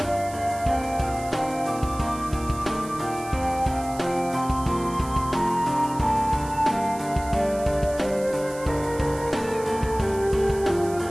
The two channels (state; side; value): noise; right; hiss, 17 dB below the sound